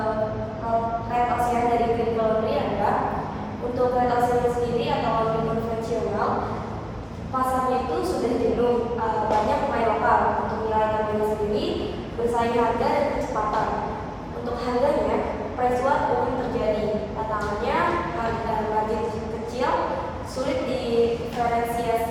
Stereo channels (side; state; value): both; identical; correlation 1.00